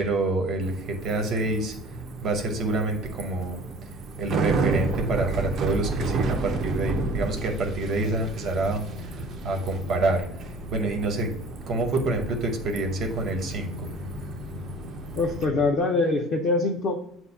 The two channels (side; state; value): both; normal; correlation 0.45